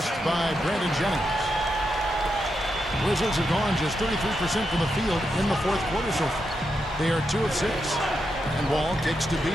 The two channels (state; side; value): normal; both; correlation 0.85